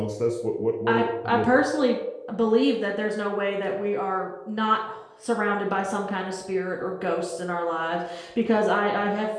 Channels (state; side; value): identical; both; correlation 1.00